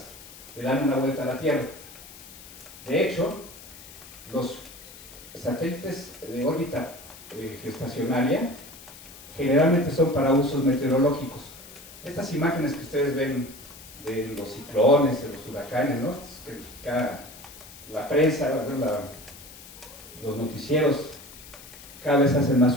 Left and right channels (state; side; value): noise; left; hiss, 18 dB below the sound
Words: le dan una vuelta a la Tierra. De hecho, los satélites de órbita geoestacionaria generalmente son para usos meteorológicos. Estas imágenes que ustedes ven de los ciclones, de los huracanes, ¿no? La prensa, los noticieros cada vez hacen más